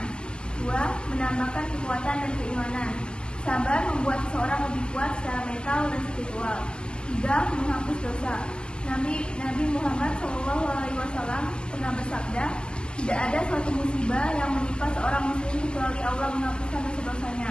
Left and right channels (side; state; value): right; late; 0.052 ms